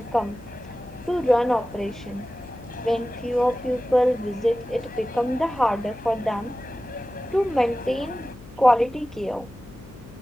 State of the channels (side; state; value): left; noise; hum, 20 dB below the sound